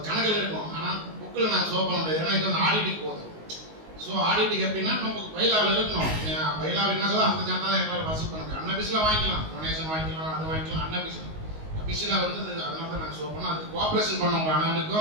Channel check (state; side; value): late; left; 19 ms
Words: கணக்கில் இருக்கும். ஆனால் புக்கில் நாங்கள் ஷோ பண்ண முடியாது, ஏன்னா இது வந்து ஆடிட்டுக்கு போகுது. ஸோ ஆடிட்டுக்கு எப்படின்னா நம்ம பைலாவில் இருக்கணும். பைலாவில் என்ன சொல்ல அந்த சாந்தா தான் எங்களால் வசூல் பண்ண முடியும். அன்னபிஸில் வாங்கிக்கலாம், டொனேஷன் வாங்கிக்கலாம், அதை வாங்கிக்கலாம். அன்னபிஸில் வந்து அதனால தான் நாங்கள் ஷோ பண்ணோம். அதுக்கு கோஆப்ரேஷன் பண்ணவங்க